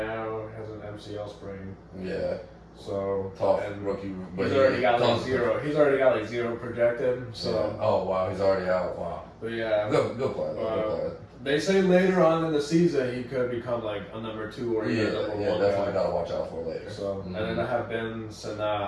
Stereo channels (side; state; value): both; identical; correlation 1.00